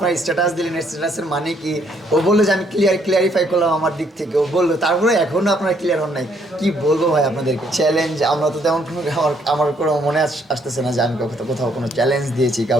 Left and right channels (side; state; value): both; normal; correlation 0.69